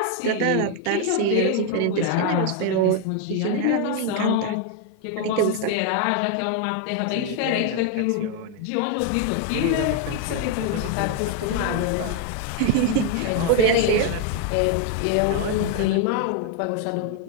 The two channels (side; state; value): both; different; correlation 0.01